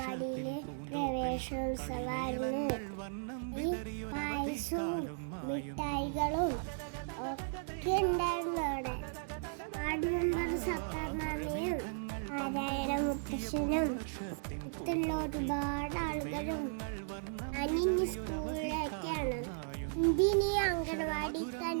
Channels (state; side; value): silent; left; digital silence